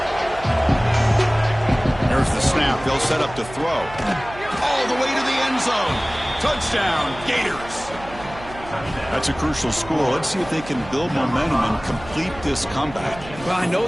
There's the snap. They'll set up to throw. All the way to the end zone. Touchdown, Gators. That's a crucial score. Let's see if they can build momentum and complete this comeback. Well, I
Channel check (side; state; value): right; noise; hum, 16 dB below the sound